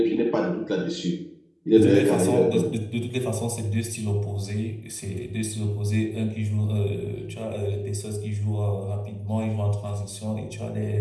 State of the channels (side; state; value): both; identical; correlation 1.00